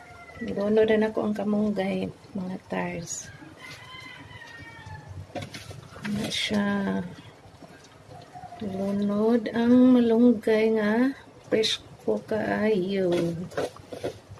Ilunod na ako ang kamunggay mga tars. Na siya. Lunod ang malunggay nga fresh ko kaayo.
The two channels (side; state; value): both; identical; correlation 1.00